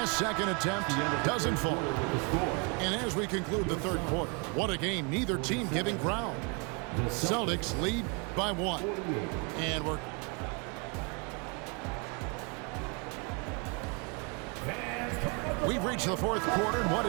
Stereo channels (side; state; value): left; quieter; 33.5 dB